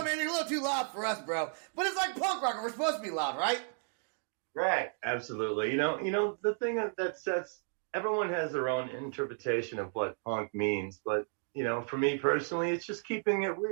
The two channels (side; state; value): left; silent; 56 dB below the other